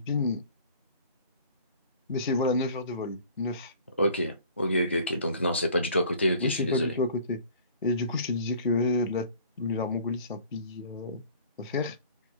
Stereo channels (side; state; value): both; inverted; correlation -0.50